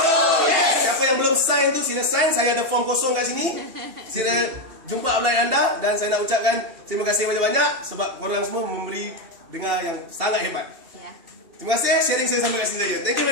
yes. Siapa yang belum sign tu sila sign. Saya ada form kosong kat sini. Sila jumpa upline anda. Dan saya nak ucapkan terima kasih banyak-banyak sebab korang semua memberi dengar yang sangat hebat. Ya. Terima kasih sharing saya sampai kat sini saja. Thank you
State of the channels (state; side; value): late; left; 2.7 ms